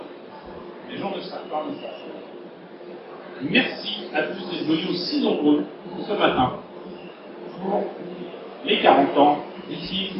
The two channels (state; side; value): identical; both; correlation 1.00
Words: Les gens ne savent pas ça. Merci à tous d'être venus aussi nombreux ce matin pour les 40 ans du film